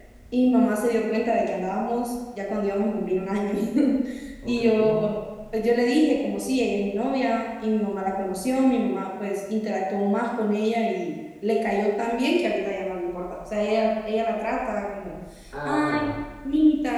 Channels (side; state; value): both; identical; correlation 1.00